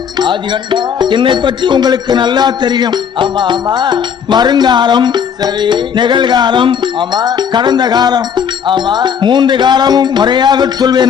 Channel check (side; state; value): right; quieter; 7.5 dB